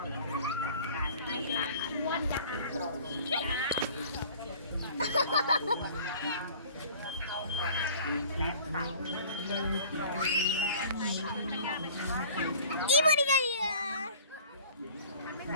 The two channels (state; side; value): inverted; both; correlation -0.47